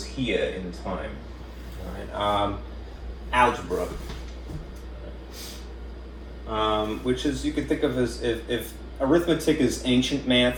here in time. All right. Algebra, which is, you could think of as if arithmetic is ancient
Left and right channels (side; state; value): both; identical; correlation 1.00